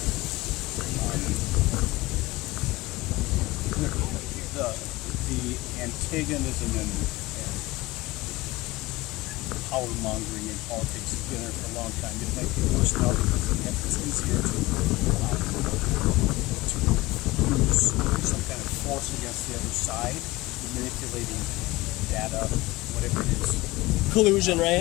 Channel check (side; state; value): right; quieter; 20.4 dB